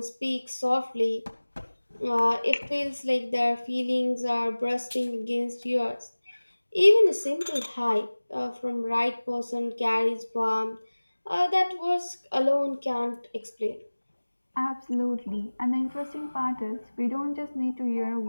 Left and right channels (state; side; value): inverted; both; correlation -1.00